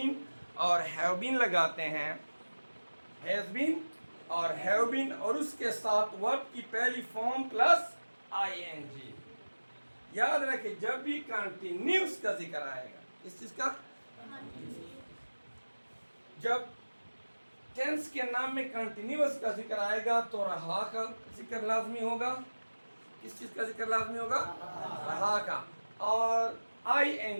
और हैव बीन लगाते हैं, हैज़ बीन और हैव बीन, और उसके साथ वर्ब की पहली फॉर्म प्लस आईएनजी। याद रखें, जब भी कंटिन्यूस का जिक्र आएगा, इस चीज का, जब टेंस के नाम में कंटिन्यूस का जिक्र आएगा तो रहा का जिक्र लाजमी होगा। किस चीज का जिक्र लाजमी होगा? रहा का। और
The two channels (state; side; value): inverted; both; correlation -1.00